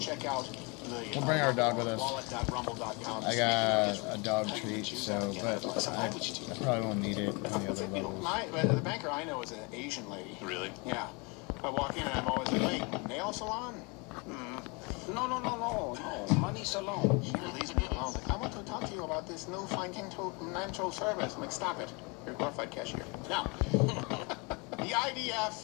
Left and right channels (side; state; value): right; quieter; 29.7 dB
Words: check out the We'll bring our dog with us. wallet.rumble.com. I got a dog treat, so, but I probably won't need it on the other levels. The banker I know is an Asian lady. Really? Yeah. I walk in and I'm always like, wait, nail salon? No, money salon. She leaves me alone. Like, I want to talk to you about this new financial service. I'm like, stop it. You're a glorified cashier. Now, the